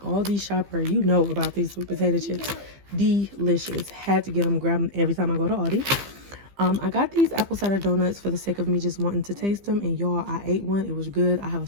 shopper, you know about these sweet potato chips. Delicious. Had to get them, grab them every time I go to Aldi. I got these apple cider donuts for the sake of me just wanting to taste them, and y'all, I ate one. It was good. I have a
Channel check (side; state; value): left; late; 15 ms